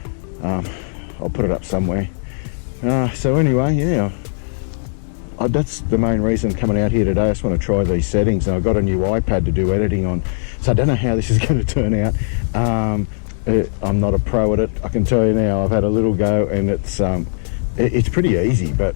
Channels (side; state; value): right; silent; digital silence